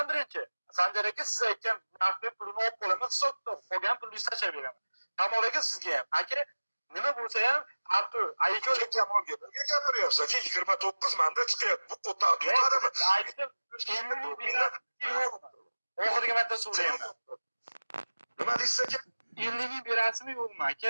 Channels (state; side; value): inverted; both; correlation -1.00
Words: birinchi. Sanjar aka siz aytgan narxga pulini olib qo'yaman, hisobda qolgan pulni tashlab beraman. Kamol aka sizga ham. Aka, nima bo'lsa ham Artu, aka Kamolga nega gapiryapsiz aka? 29 menda chiqyapti. Bu quota tutadimi? aytdim. Oxirgi marta so'rayman. Nima deysiz aka? 50 ming berasizmi yo'qmi aka